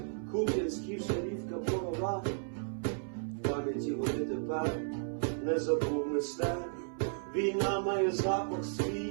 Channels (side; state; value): left; silent; 55 dB below the other